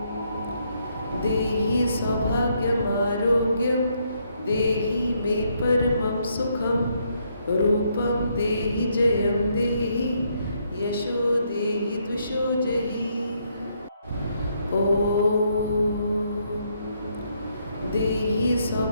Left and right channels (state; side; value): inverted; both; correlation -0.74